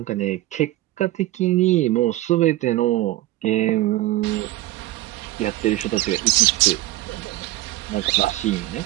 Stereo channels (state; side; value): quieter; left; 16.7 dB